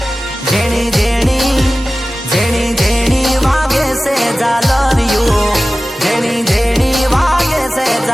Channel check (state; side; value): normal; both; correlation 0.96